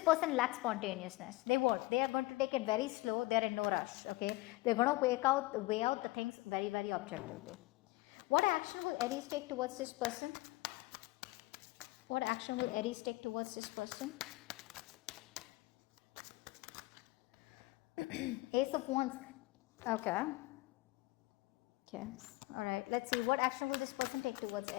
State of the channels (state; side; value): quieter; right; 20.3 dB